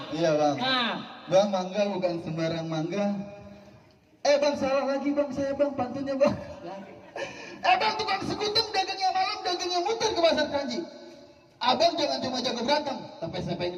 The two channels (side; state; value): both; identical; correlation 1.00